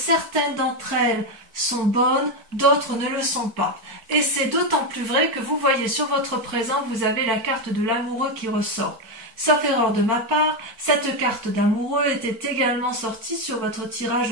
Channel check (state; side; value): late; left; 4.5 ms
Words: d'entre elles sont bonnes, d'autres ne le sont pas. Et c'est d'autant plus vrai que vous voyez sur votre présent, vous avez la carte de l'amoureux qui ressort. Sauf erreur de ma part, cette carte d'amoureux était également sortie sur votre tirage